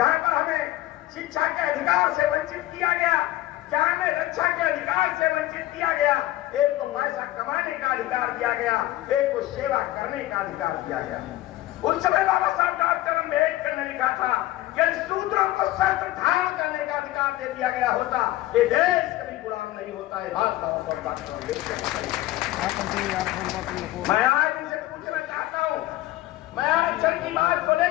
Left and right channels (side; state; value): right; quieter; 16.1 dB